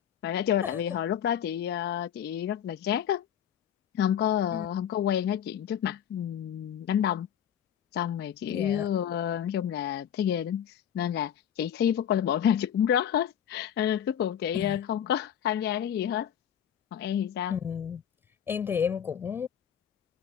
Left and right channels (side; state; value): right; quieter; 9.4 dB